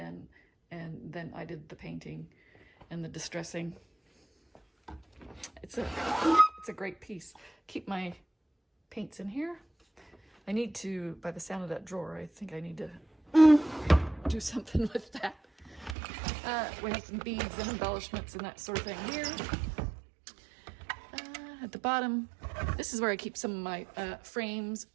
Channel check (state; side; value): drops out; left; at 16.0 s